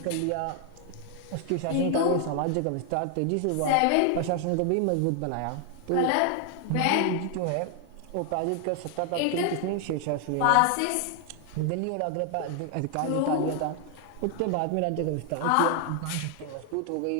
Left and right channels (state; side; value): different; both; correlation 0.00